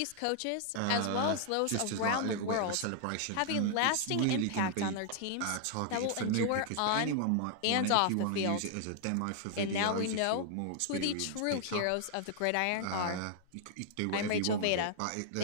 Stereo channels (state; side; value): different; both; correlation 0.00